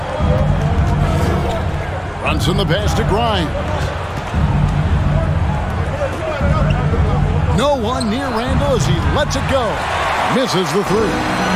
Brunson the pass to Grimes. No one near Randall as he lets it go. Misses the 3.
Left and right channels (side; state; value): both; identical; correlation 1.00